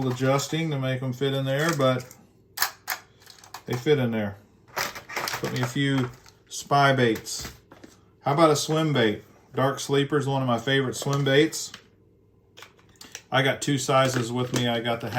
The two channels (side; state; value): both; identical; correlation 1.00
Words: adjusting to make them fit in there, but they fit in there. Put me a few spy baits. How about a swim bait? Dark Sleeper is one of my favorite swim baits. I got two sizes with me. I got the